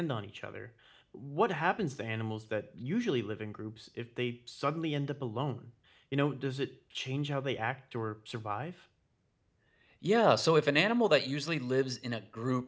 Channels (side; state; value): both; identical; correlation 1.00